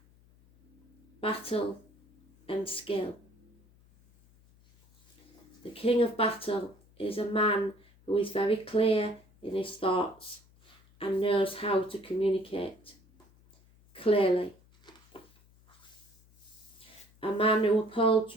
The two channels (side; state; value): left; noise; hum, 29 dB below the sound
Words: battle and skill. The King of Battle is a man who is very clear in his thoughts and knows how to communicate clearly. A man who